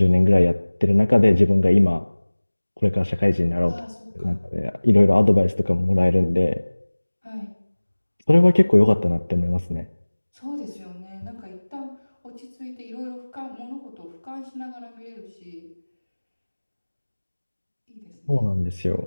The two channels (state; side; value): inverted; both; correlation -1.00